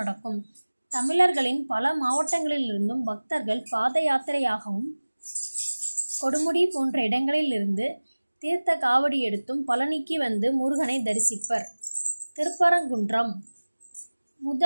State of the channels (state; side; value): inverted; both; correlation -1.00